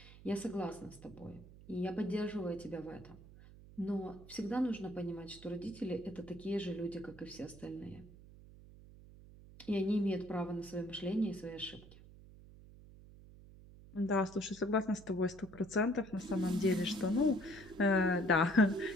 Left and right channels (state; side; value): noise; right; hum, 19 dB below the sound